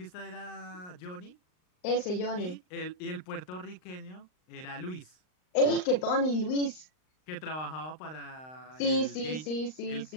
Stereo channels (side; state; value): right; late; 39 ms